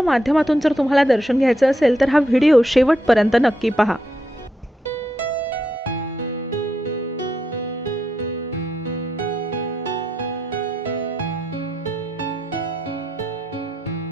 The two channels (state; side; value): normal; both; correlation 0.81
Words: माध्यमातून जर तुम्हाला दर्शन घ्यायचं असेल तर हा व्हिडिओ शेवटपर्यंत नक्की पहा।